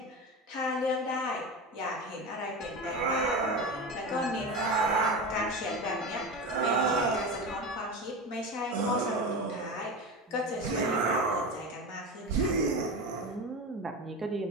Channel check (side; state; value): both; normal; correlation 0.24